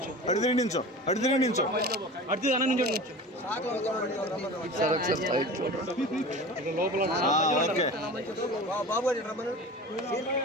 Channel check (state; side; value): normal; both; correlation 0.35